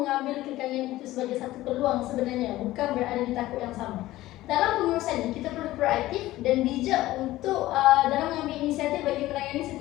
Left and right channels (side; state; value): right; quieter; 16.4 dB